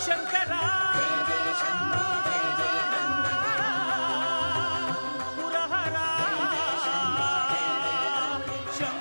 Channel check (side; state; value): both; inverted; correlation -1.00